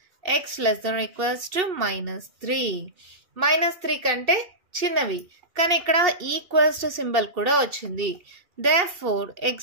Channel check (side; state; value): left; late; 2.7 ms